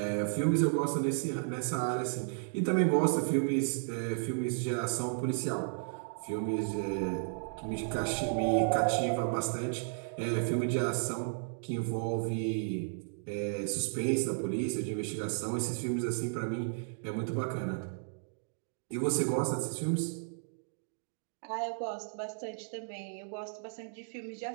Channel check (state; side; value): silent; left; digital silence